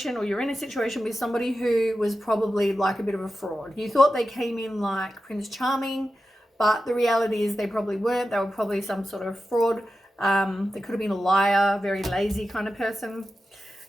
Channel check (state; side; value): normal; both; correlation 0.92